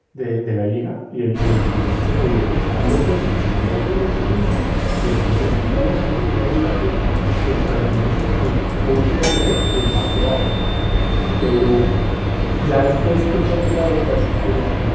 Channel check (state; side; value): identical; both; correlation 1.00